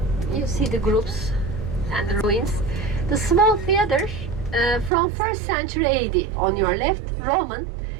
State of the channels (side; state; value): left; drops out; at 4.9 s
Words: You see the groups and the ruins. The small theater from 1st century AD on your left, Roman.